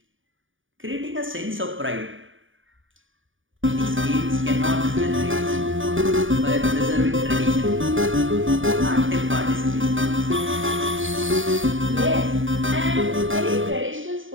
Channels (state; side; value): late; left; 0.57 ms